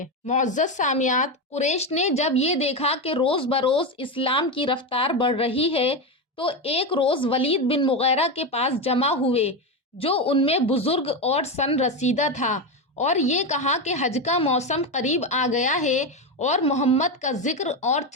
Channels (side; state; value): both; normal; correlation 0.14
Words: معزز سامعات، قریش نے جب یہ دیکھا کہ روز بروز اسلام کی رفتار بڑھ رہی ہے تو ایک روز ولید بن مغیرہ کے پاس جمع ہوئے، جو ان میں بزرگ اور سن رسیدہ تھا، اور یہ کہا کہ حج کا موسم قریب آ گیا ہے اور محمد کا ذکر اور